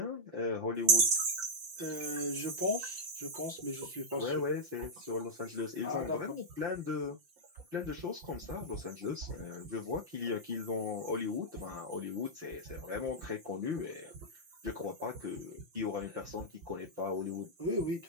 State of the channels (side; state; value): left; late; 5.8 ms